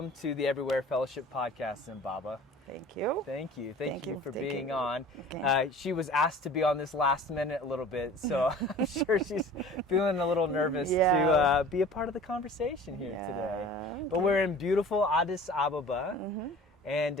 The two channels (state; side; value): normal; both; correlation 0.44